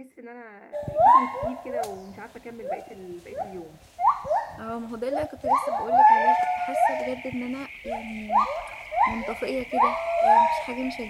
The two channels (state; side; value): identical; both; correlation 1.00